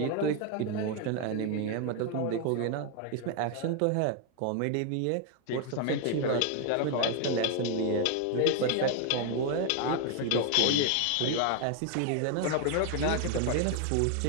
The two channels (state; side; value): different; both; correlation 0.01